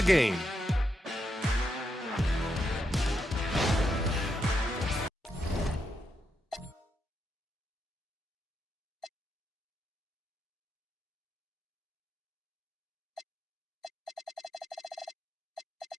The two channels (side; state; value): both; normal; correlation 0.82